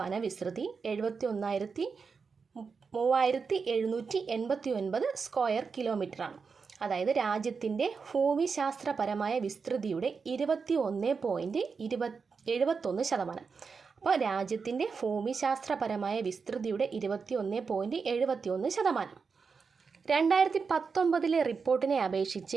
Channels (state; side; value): quieter; left; 5.3 dB